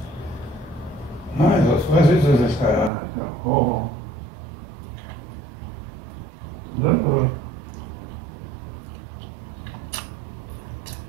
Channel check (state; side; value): drops out; left; at 2.9 s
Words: Was ist das? Oh.